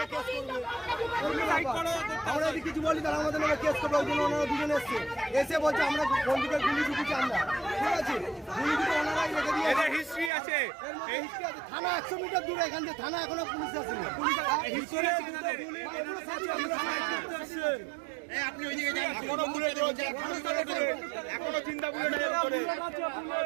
আমরা যদি কিছু বলি তাহলে আমাদের নামে কেস করবে। ওই জন্য ওনারা দুজন এসছে, এসে বলছে আমরা বন্ধুকে গুলি ঢুকেছি আমরা, ঠিক আছে? গুলি ঢুকে ওনারাই রেখে দিয়ে হিস্ট্রি আছে। থানা 100 মিটার দূরে, এখান থেকে থানা এখনো পুলিশ আসেনি। আপনি ওইদিকে যান, এখনো বুলেট রয়েছে, এখনো চিন্তা বুলেট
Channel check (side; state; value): left; drops out; at 10.3 s